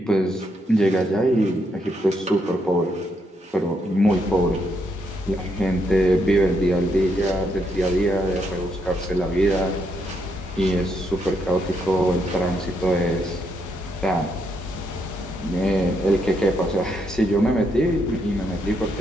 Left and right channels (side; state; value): both; normal; correlation 0.77